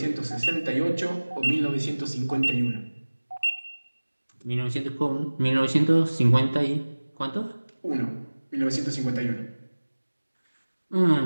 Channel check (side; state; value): both; inverted; correlation -1.00